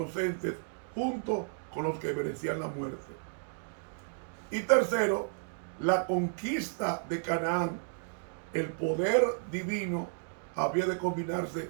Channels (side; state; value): left; silent; digital silence